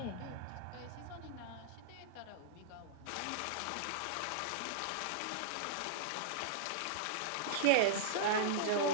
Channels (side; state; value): both; different; correlation -0.02